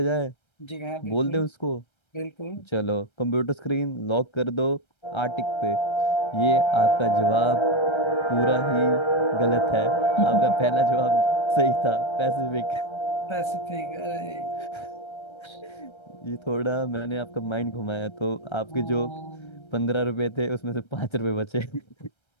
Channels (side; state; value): right; late; 1.3 ms